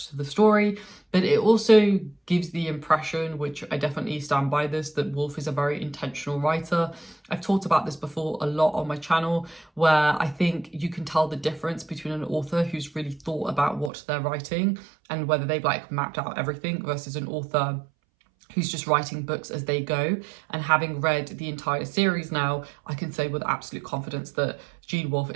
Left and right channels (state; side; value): drops out; left; at 13.9 s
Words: to the story, but it also gives the impression, which I definitely stand by this, that Wolfe is a very intentional writer. I've talked about this before a lot on my channel, where I think you can tell the difference between an author who's really thought about what they're writing and whether they've like mapped out everything versus an author who's just writing books as they go. And having read the entire series now, I can say with absolute confidence that Gene Wolfe